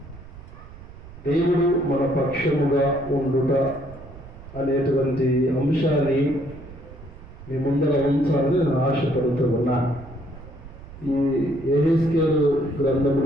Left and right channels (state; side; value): noise; right; rumble, 17 dB below the sound